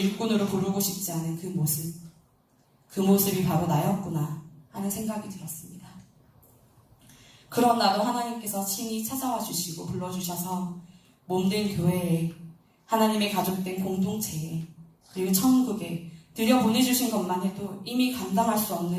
부르고 싶지 않은 그 모습이 바로 나였구나 하는 생각이 들었습니다. 그런 나도 하나님께서 친히 찾아와 주시고 불러주셔서 몸된 교회에 하나님의 가족된 공동체에 그리고 천국에 들여보내주신 것만 해도 이미 감당할 수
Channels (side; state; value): both; identical; correlation 1.00